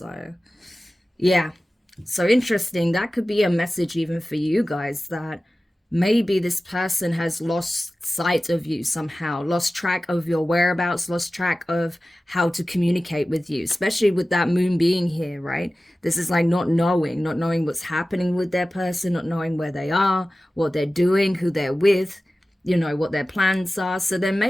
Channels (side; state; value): both; normal; correlation 0.96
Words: yeah, so interesting. That could be a message even for you guys, that maybe this person has lost sight of you somehow, lost track of your whereabouts, lost track of how to communicate with you, especially with that moon being here, right? This is like not knowing what's happening with their person, not knowing where they are, what they're doing, who they're with, you know, what their plans are. So there